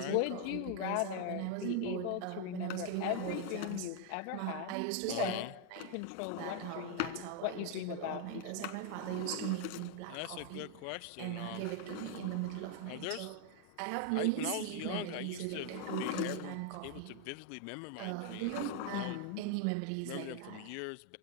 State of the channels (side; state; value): both; different; correlation 0.00